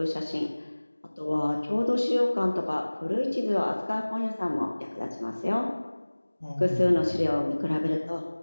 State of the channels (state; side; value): inverted; both; correlation -1.00